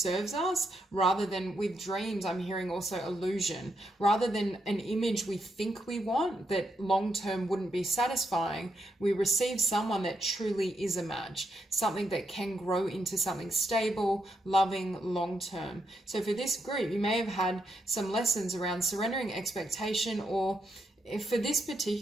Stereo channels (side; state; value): both; normal; correlation 0.80